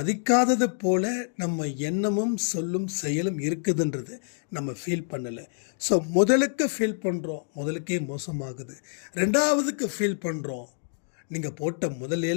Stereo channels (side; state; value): right; silent; digital silence